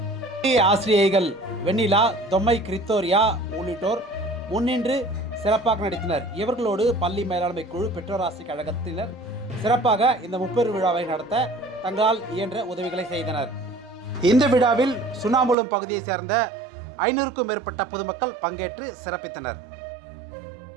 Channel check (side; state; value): left; drops out; at 15.6 s